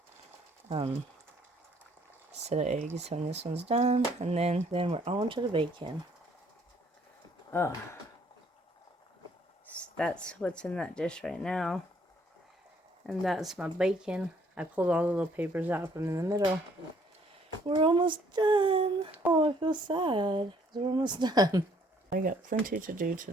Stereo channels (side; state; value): both; normal; correlation 0.64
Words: set of eggs when this one's done. And then we're on to the bacon. Oh. That's what's in that dish right now. And that's my bacon. I pulled all the little papers out from in the middle. We're almost done. Oh, I feel sad. We're almost done. I got plenty to do